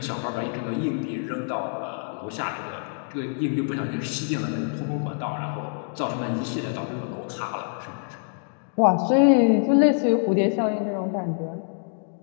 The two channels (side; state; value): right; silent; 61 dB below the other